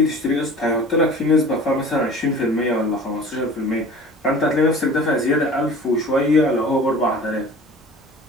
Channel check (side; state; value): both; normal; correlation 0.42